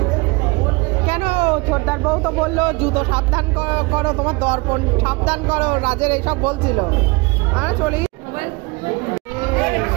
কেন ছোটদার বউ তো বললো জুতো সাবধান করো তোমার দর্পণ সাবধান করো রাজের এইসব বলছিল আর চলি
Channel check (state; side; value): quieter; left; 26.4 dB